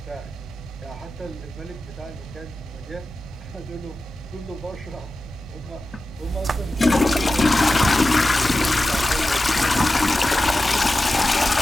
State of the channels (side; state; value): both; normal; correlation 0.93